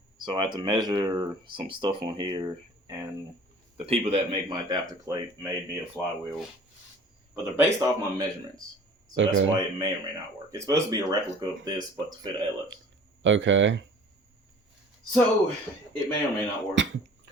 So I had to measure some stuff on here, and the people that make my adapter plate made me a flywheel. But they're based off my measurements. So Okay. that's why it may or may not work. It's supposed to be a replica of this, but to fit a LS. Okay. So it may or may not work,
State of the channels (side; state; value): both; normal; correlation 0.48